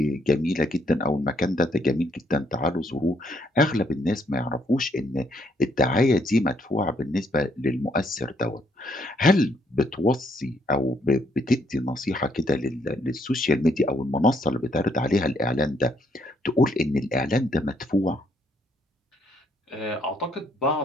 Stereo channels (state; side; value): normal; both; correlation 0.71